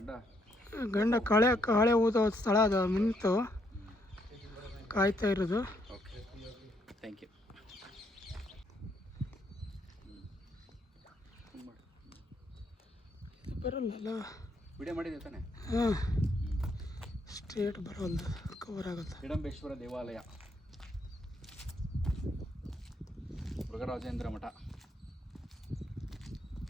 ಗಂಡ ಕಾಳೆ ಊದೋ ಸ್ಥಳ ಅದು. ನಿಂತು ಕಾಯ್ತಾ ಇರೋದು. Okay, thank you. ಬರಲ್ಲ ವಿಡಿಯೋ ಮಾಡಿದೆ ತಾನೆ? ಹಾಂ, ಸ್ಟ್ರೇಟ್ ಬರೋಲ್ಲ, ಕವರ್ ಆಗುತ್ತೆ. ಹಿಡಂಬೇಶ್ವರ ದೇವಾಲಯ, ಮೃಗರಾಜೇಂದ್ರ ಮಠ.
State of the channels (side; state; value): both; normal; correlation 0.73